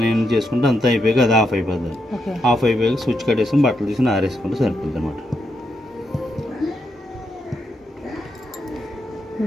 ఏం చేసుకుంటే అంతా అయిపోయాక అది ఆఫ్ అయిపోతుంది. ఆఫ్ అయిపోయాక స్విచ్ కట్టేసుకుని బట్టలు తీసుకుని ఆరేసుకుంటే సరిపోతుంది అనమాట.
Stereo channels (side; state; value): both; normal; correlation 0.81